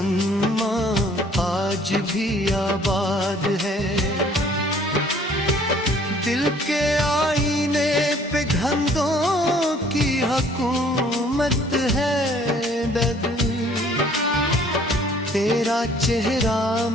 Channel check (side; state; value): both; normal; correlation 0.57